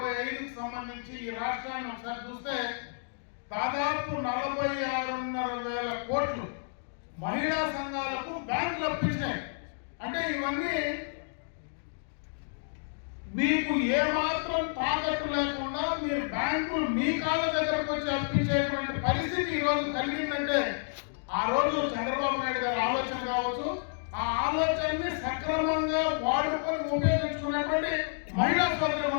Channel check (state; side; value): silent; right; digital silence